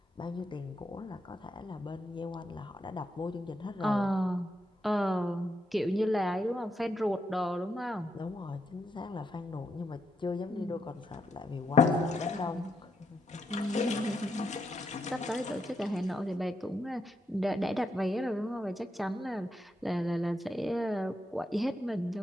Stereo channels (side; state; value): both; normal; correlation 0.81